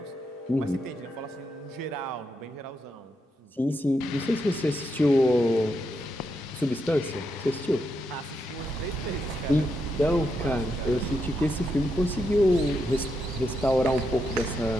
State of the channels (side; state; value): both; normal; correlation 0.82